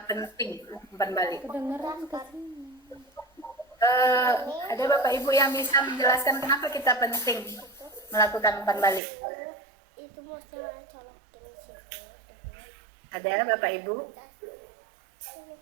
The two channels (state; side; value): drops out; left; at 9.0 s